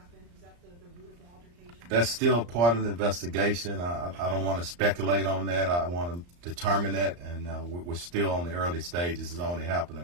Was that the root of the altercation? That's still part of the investigation. I don't want to speculate on that. I want to determine that, and we're still on the early stages. It's only happened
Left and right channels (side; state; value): left; late; 34 ms